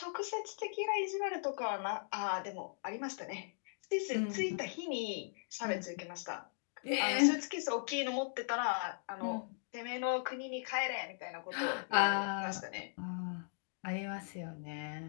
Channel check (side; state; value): right; silent; digital silence